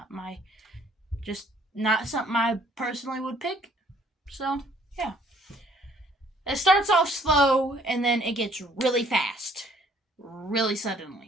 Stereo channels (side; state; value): both; normal; correlation 0.61